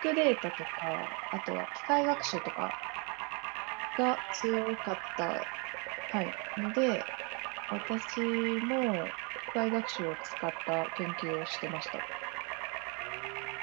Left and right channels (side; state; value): left; quieter; 33.4 dB